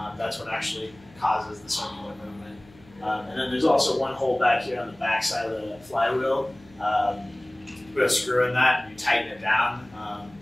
That's what actually causes the circular movement. And then there's also one hole back here on the back side of the flywheel. Put a screw in that, and you tighten it down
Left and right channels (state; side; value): noise; left; hum, 25 dB below the sound